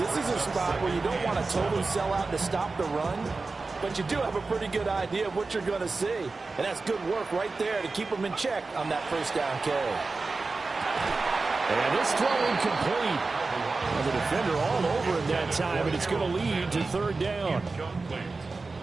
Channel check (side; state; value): left; quieter; 3.8 dB